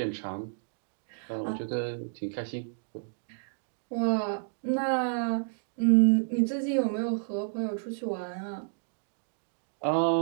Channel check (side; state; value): left; silent; digital silence